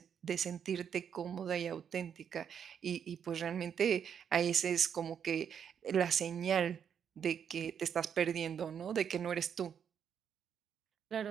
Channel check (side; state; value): left; quieter; 8.0 dB